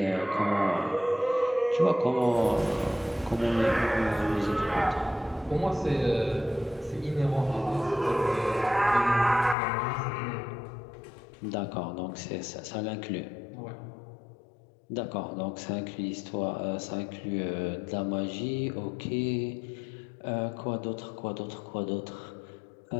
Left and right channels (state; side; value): drops out; right; at 9.6 s